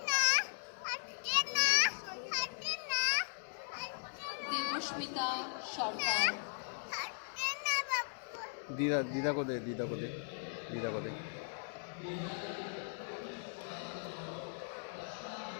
দেবস্মিতা সরকার। দিদা দিদা কোথায় দিদা কোথায় দিদা কোথায়?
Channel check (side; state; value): right; silent; 52 dB below the other